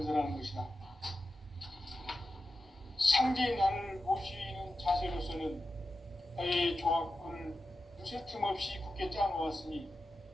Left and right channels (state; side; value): normal; both; correlation 0.92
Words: 것이다. 상제인 나를 모시는 자세로서는 나의 조화권을 무쇠 틈 없이 굳게 짜놓았으니